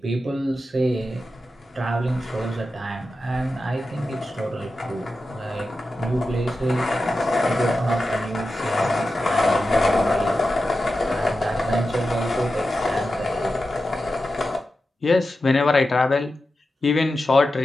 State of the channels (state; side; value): normal; both; correlation 0.91